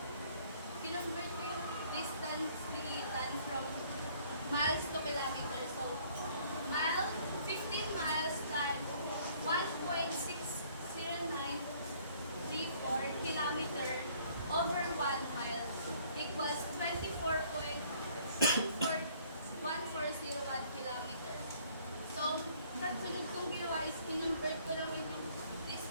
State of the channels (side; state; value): both; inverted; correlation -0.60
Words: distance ni Ethan from miles to kilometers. So, 15 miles times 1.60934 kilometer over 1 mile equals 24.14101 kilometer. So, kasunod kong ginawa is kinonvert ko naman yung